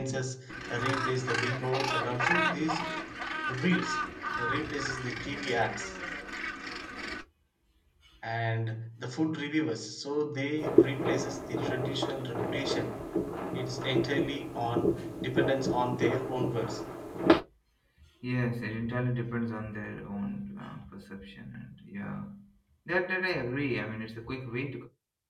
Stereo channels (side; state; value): both; identical; correlation 1.00